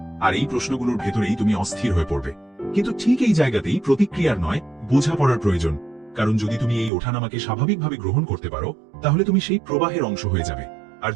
আর এই প্রশ্নগুলোর ভেতরেই তুমি অস্থির হয়ে পড়বে। কিন্তু ঠিক এই জায়গাতেই প্রতিক্রিয়ার নয়, বোঝাপড়ার প্রয়োজন। কারণ যদি তুমি এই ওঠানামাকে স্বাভাবিকভাবে গ্রহণ করতে পারো, তাহলে তুমি সেই প্রবাহের অংশ হয়ে যাবে। আর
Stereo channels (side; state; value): left; drops out; at 6.9 s